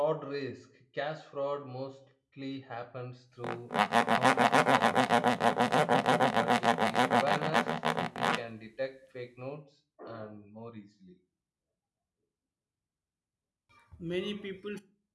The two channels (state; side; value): identical; both; correlation 1.00